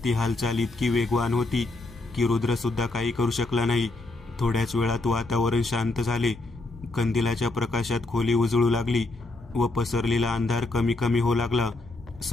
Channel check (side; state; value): right; quieter; 3.1 dB